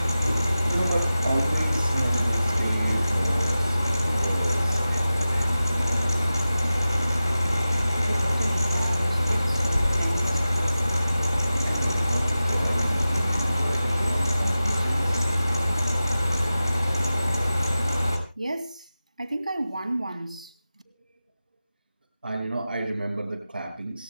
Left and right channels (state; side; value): inverted; both; correlation -0.94